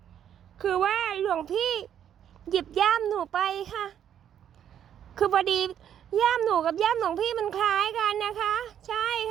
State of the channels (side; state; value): left; quieter; 9.7 dB